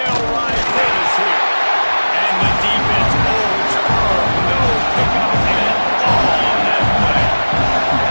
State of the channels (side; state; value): both; inverted; correlation -1.00